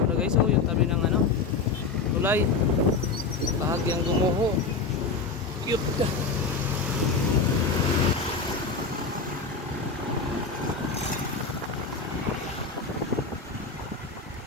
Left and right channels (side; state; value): right; quieter; 4.5 dB